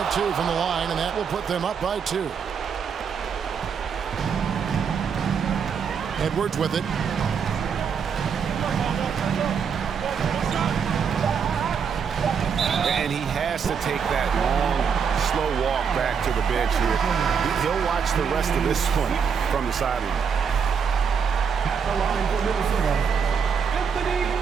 2 from the line, and that will put them up by 2. Edwards with it. And he has to take that long, slow walk back to the bench here. He'll watch the rest of this one from the sideline. At the line for Minnesota, Anthony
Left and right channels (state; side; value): quieter; left; 6.6 dB